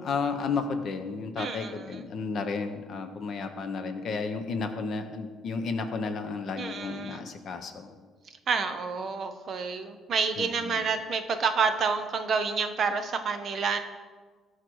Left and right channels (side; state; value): both; normal; correlation 0.66